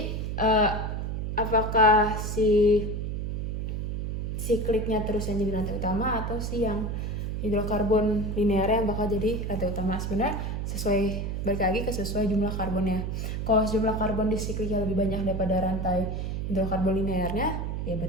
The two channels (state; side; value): noise; right; hum, 3 dB below the sound